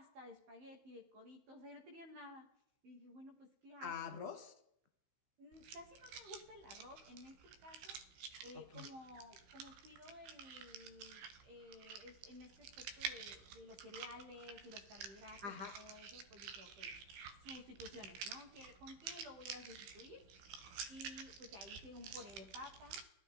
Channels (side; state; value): left; late; 15 ms